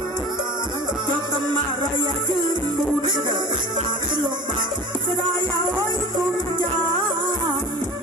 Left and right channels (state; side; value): normal; both; correlation 0.37